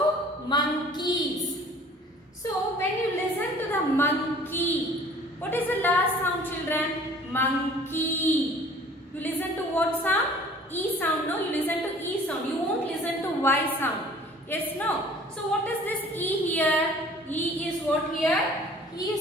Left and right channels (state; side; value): normal; both; correlation 0.50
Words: monkeys. So when you listen to the monkey, what is the last sound children? Monkey. You listen to what sound? E sound. No, you listen to E sound. You won't listen to Y sound. Yes, no. So what is this E here? E is what here? E